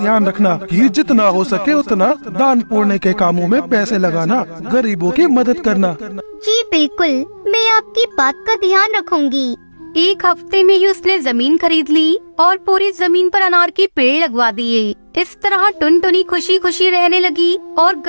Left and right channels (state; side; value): inverted; both; correlation -1.00